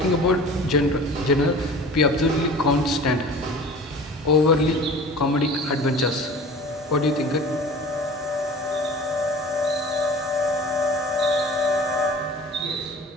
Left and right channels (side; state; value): both; normal; correlation 0.41